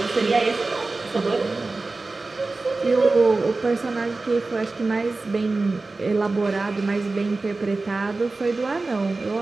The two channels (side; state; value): left; quieter; 3.5 dB